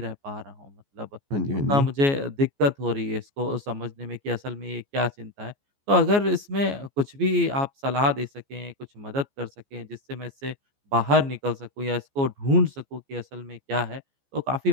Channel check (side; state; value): left; late; 14 ms